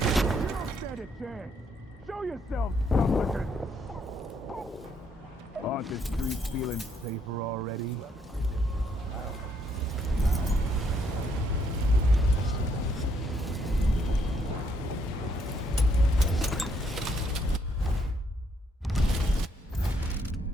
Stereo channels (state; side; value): normal; both; correlation 0.72